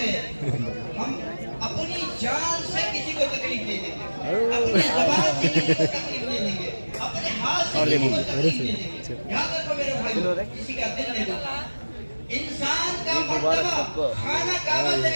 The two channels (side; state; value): both; inverted; correlation -1.00